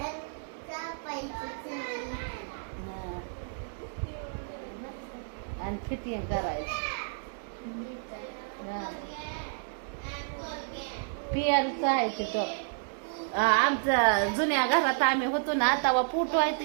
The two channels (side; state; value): left; silent; digital silence